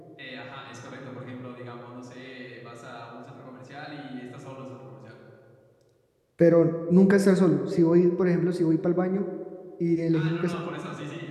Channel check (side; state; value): both; identical; correlation 1.00